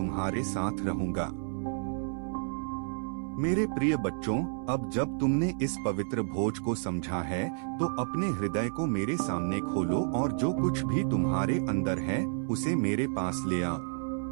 साथ रहूंगा। मेरे प्रिय बच्चों, अब जब तुमने इस पवित्र भोज को समझा है तो अपने हृदय को मेरे सामने खोलो और जो कुछ भी तुम्हारे अंदर है उसे मेरे पास ले आओ।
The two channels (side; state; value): left; silent; digital silence